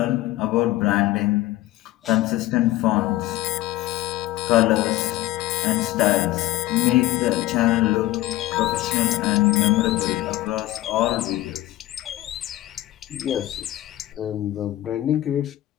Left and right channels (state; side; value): quieter; right; 16.1 dB